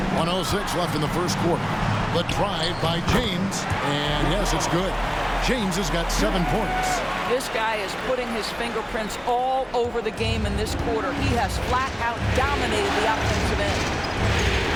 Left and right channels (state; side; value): identical; both; correlation 1.00